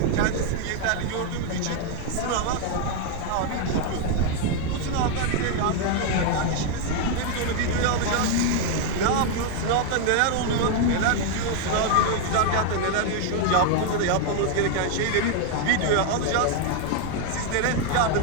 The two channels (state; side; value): different; both; correlation 0.01